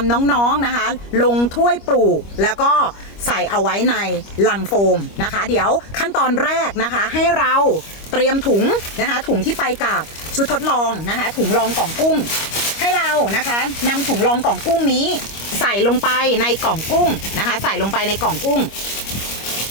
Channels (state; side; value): late; right; 25 ms